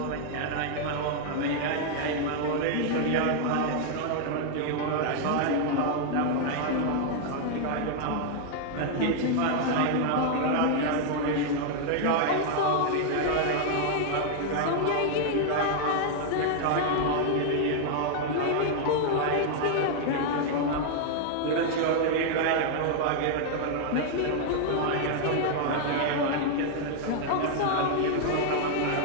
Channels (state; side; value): different; both; correlation 0.00